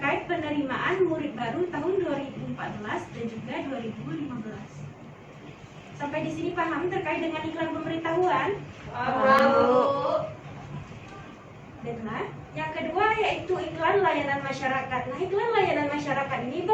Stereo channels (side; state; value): both; identical; correlation 1.00